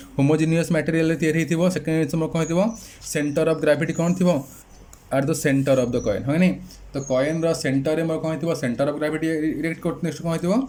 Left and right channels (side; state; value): both; identical; correlation 1.00